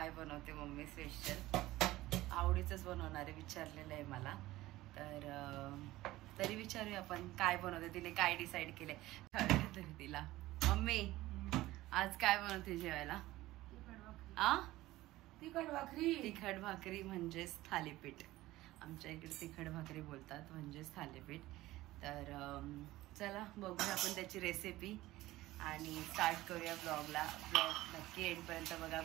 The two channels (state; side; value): quieter; left; 17.1 dB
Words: बनवते मम्मी स्पेशल। आवडीचंच बनवणारे विचारलेलं आहे मला, तर तरी विचारूया आपण काय बनवते, तिने काय डिसाईड केलंय कळलं तरी तिला। मम्मी आज काय बनवते जेवायला? तिखट भाकरी म्हणजेच थालीपीठ। आमच्या इकडे तिखट भाकरी बोलतात म्हणजेच थालीपीठ। तर चला बघूया आपण त्याची रेसिपी आणि स्टार्ट करूया ब्लॉगला। ब्लॉग नक्की एंडपर्यंत बघा।